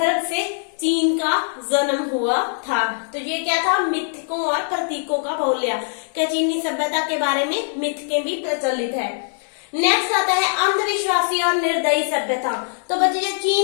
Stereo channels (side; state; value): right; silent; digital silence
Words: से चीन का जन्म हुआ था। तो ये क्या था? मिथकों और प्रतीकों का बहुल्य। क्या चीनी सभ्यता के बारे में मिथकें भी प्रचलित है। नेक्स्ट आता है अंधविश्वासी और निर्दयी सभ्यता। तो बच्चे, जो